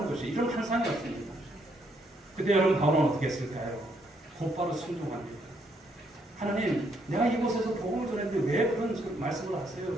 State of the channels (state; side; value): normal; both; correlation 0.73